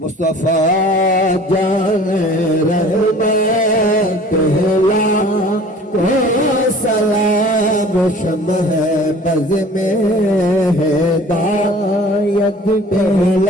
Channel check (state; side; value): normal; both; correlation 0.47